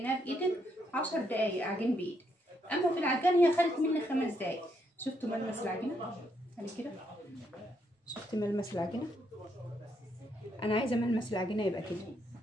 بايدك 10 دقايق عجين بايدك، اما في العجان هي خدت مني 5 دقايق. شفتوا ملمس العجينه؟ على كده شفت ملمس العجينه؟ انا عايزه ملمس العجينه يبقى كده.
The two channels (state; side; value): normal; both; correlation 0.76